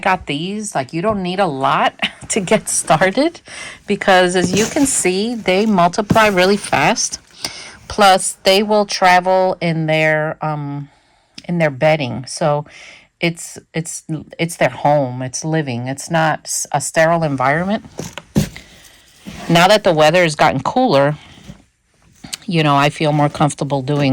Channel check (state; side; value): identical; both; correlation 1.00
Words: these, like you don't need a lot to get started, because as you can see, they multiply really fast. Plus, they will travel in their bedding, so it's their home. It's living. It's not a sterile environment. Now that the weather has gotten cooler, you know, I feel more comfortable